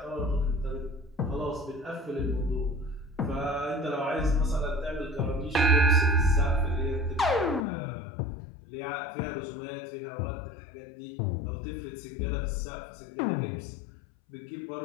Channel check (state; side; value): drops out; right; at 7.7 s